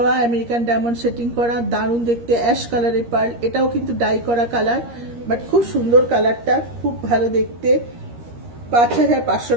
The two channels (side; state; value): left; late; 13 ms